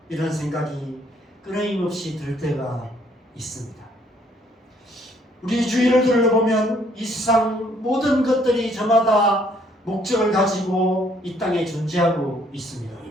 이런 생각이 끊임없이 들 때가 있습니다. 우리 주위를 둘러보면 이 세상 모든 것들이 저마다 목적을 가지고 이 땅에 존재하고 있습니다.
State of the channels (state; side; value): normal; both; correlation 0.65